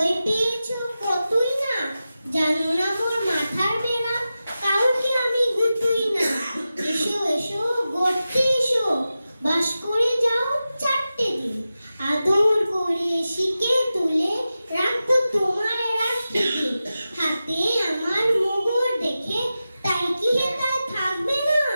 পেয়েছো কতই না। জানো না মোর মাথার বেড়া, কাউকে আমি গুতুই না। এসো এসো গড়তে এসো, বাস করে যাও 4টে দিন। আদর করে শিকে তুলে রাখবো তোমার রাত্রিতে। হাতে আমার মোগর দেখে তাই কি হেতায় থাকবে না?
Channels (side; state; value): both; inverted; correlation -0.93